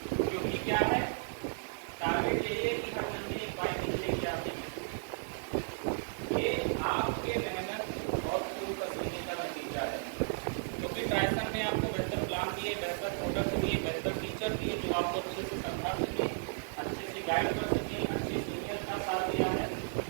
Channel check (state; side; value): silent; left; digital silence